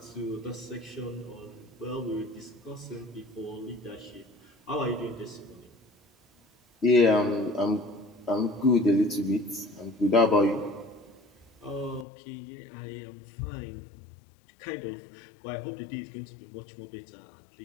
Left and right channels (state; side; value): drops out; right; at 12.1 s